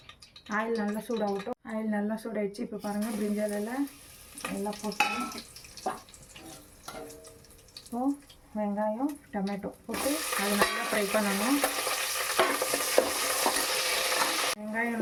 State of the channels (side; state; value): both; identical; correlation 1.00